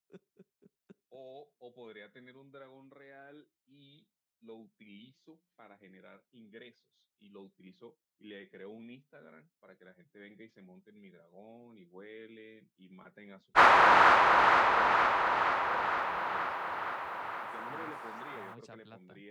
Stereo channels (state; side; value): identical; both; correlation 1.00